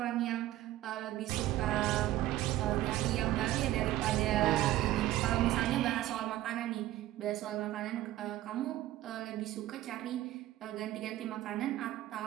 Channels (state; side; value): quieter; left; 14.7 dB